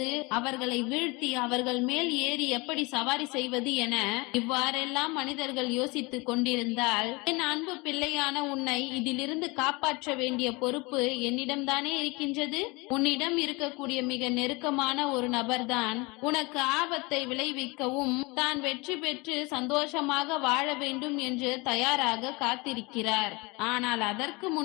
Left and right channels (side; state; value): right; quieter; 25.9 dB